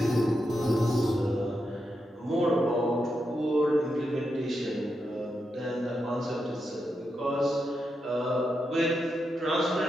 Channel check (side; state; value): both; normal; correlation 0.85